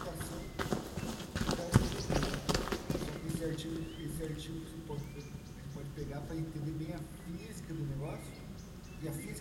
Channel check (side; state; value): both; identical; correlation 1.00